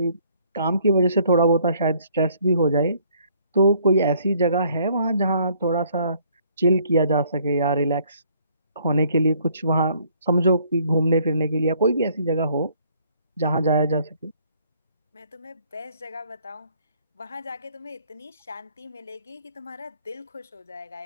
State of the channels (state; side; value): inverted; both; correlation -0.63